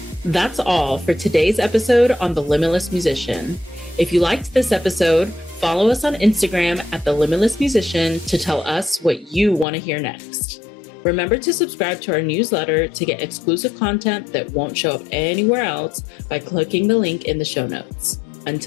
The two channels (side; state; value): right; drops out; at 9.7 s